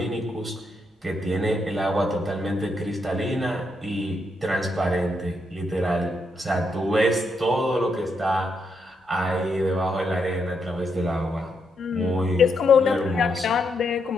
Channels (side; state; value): both; normal; correlation 0.79